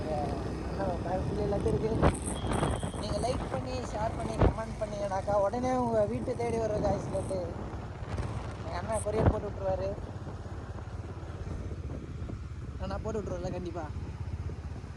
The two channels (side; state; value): both; identical; correlation 1.00